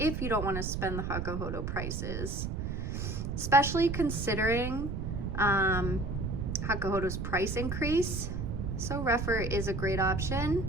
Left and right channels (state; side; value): noise; right; rumble, 3 dB below the sound